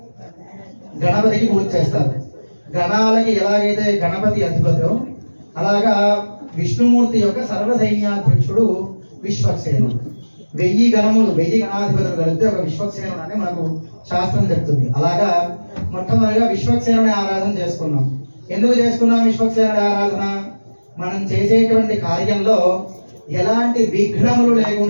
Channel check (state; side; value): inverted; both; correlation -1.00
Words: గణపతికి పూజ చేస్తారు. గణాలకి ఎలాగైతే గణపతి అధిపతో అలాగా విష్ణుమూర్తి యొక్క సర్వసైన్యాధ్యక్షుడు విశ్వక్సేనుడు. 1000 గణములు 1000 గణాధిపతులు కలిపితే ఒక విశ్వక్సేనుడు అని మనకు శాస్త్రం చెప్తుంది. అలాగా మొట్టమొదటిగా విశ్వక్సేనుని ఆరాధన చేసుకున్నాం. ఎందుకు చేసుకున్నాం విశ్వక్సేనుడి ఆరాధన? మనం చేసేటువంటి కార్యంలో ఎలాంటి విఘ్నములు